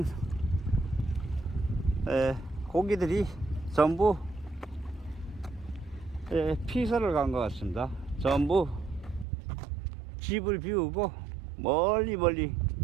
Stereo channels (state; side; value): drops out; left; at 9.2 s